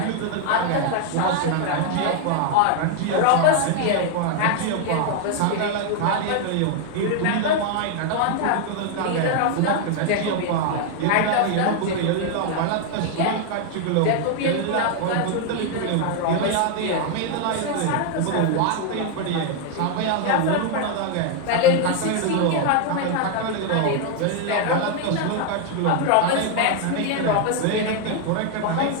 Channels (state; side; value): different; both; correlation 0.00